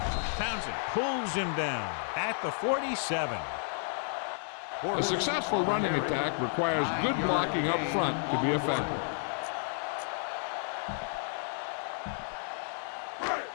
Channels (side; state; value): right; silent; 57 dB below the other